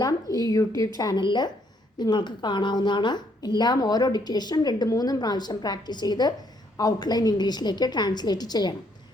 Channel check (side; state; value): both; normal; correlation 0.70